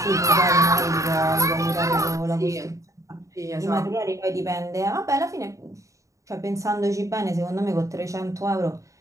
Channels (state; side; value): late; left; 0.16 ms